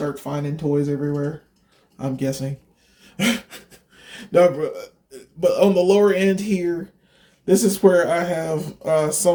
finding toys everywhere, I'm guessing. No, but on the lower end here, this is where I have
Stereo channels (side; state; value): both; identical; correlation 1.00